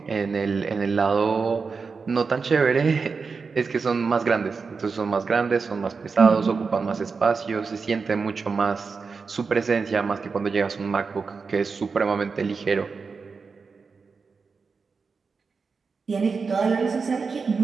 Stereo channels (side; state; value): left; quieter; 4.9 dB